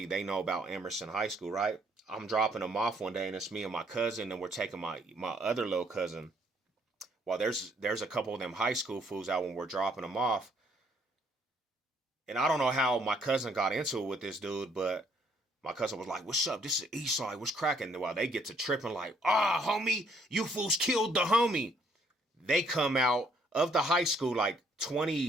they know about Emerson High School, right? I'm dropping them off one day, and it's me and my cousin, and we're taking my other little cousin. Well, there's a couple of them high school fools out when we're dropping them off, and I don't know how my cousin got into it with this dude, but my cousin was like, "What's up? This is Eastside. What's cracking?" While they get to tripping, like, "Ah, homie, you fools killed the homie." They come out of the high school like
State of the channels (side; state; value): both; normal; correlation 0.66